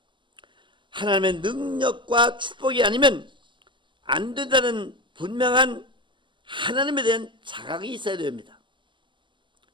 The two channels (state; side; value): late; left; 0.24 ms